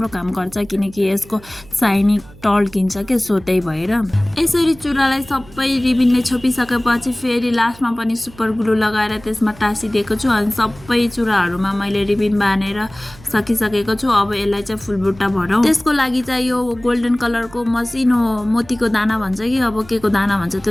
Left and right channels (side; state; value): right; noise; hum, 21 dB below the sound